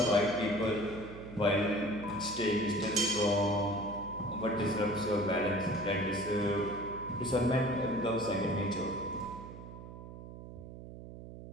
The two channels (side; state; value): right; noise; hum, 13 dB below the sound